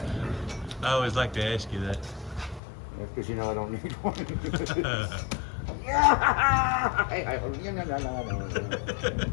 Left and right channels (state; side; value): drops out; right; at 2.6 s